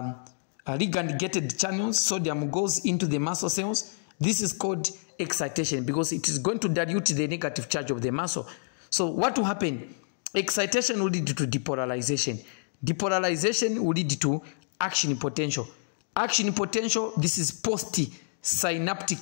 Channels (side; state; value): right; silent; digital silence